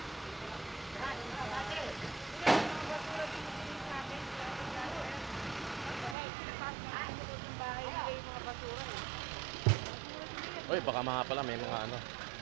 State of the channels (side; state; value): left; drops out; at 6.2 s